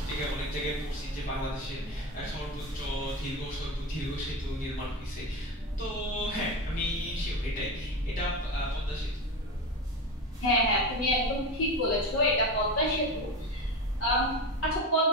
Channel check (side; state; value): both; normal; correlation 0.23